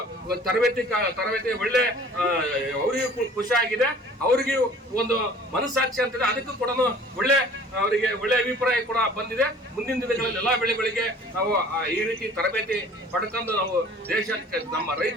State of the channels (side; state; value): both; normal; correlation 0.49